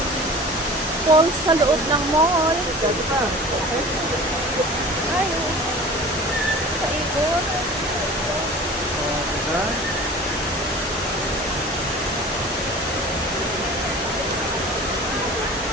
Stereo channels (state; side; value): normal; both; correlation 0.40